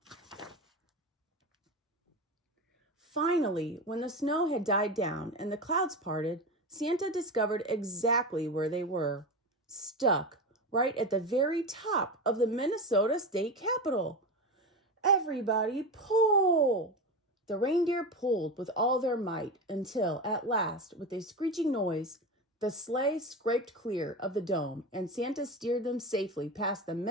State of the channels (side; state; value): both; normal; correlation 0.22